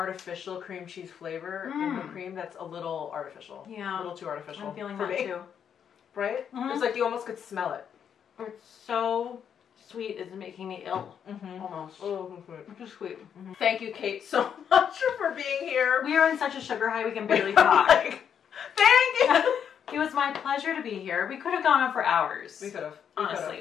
cream cheese flavor in the cream that's a little artificial. Yeah. A little too artificial. I'm feeling that too. Right? It's like you almost could smell it. It's so sweet, it's making me ill. Almost. Oh, it's just sweet. Thank you, Kate, so much for being here. We are in such a sugar high we can barely talk. Thank you. It was my pleasure to be here. We could have gone on for hours. We could have.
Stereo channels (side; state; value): right; quieter; 8.1 dB